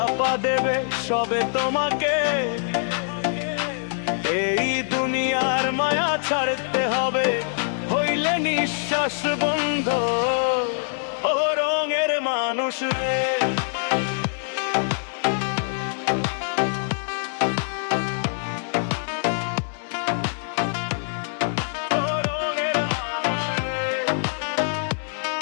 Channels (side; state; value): right; silent; digital silence